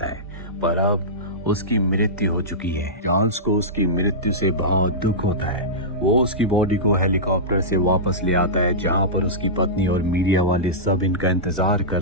है, पर अब उसकी मृत्यु हो चुकी है। चार्ल्स को उसकी मृत्यु से बहुत दुख होता है। वो उसकी बॉडी को हेलीकॉप्टर से वापस ले आता है जहाँ पर उसकी पत्नी और मीडिया वाले सब इनका इंतजार कर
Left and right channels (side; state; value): both; normal; correlation -0.16